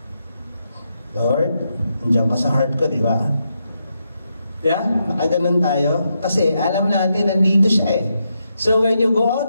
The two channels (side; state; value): both; inverted; correlation -0.83